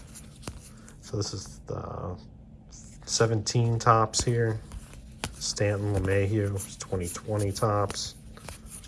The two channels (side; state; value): both; identical; correlation 1.00